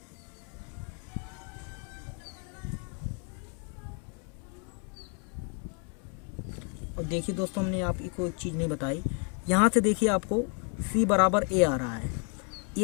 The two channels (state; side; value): quieter; right; 38.5 dB